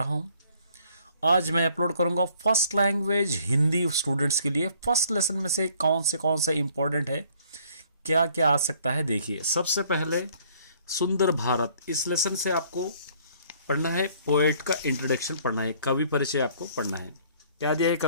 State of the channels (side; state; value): both; inverted; correlation -0.60